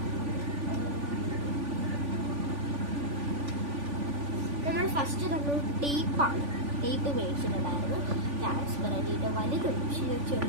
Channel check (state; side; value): late; left; 3.5 ms